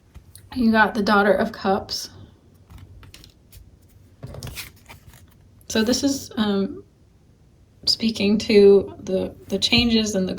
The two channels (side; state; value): both; identical; correlation 1.00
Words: You got the Daughter of Cups. So this is speaking to the changes and the